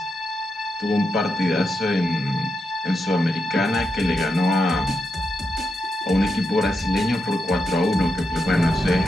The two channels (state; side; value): normal; both; correlation 0.85